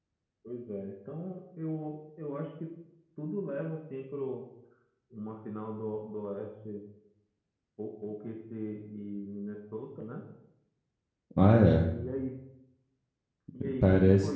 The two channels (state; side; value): identical; both; correlation 1.00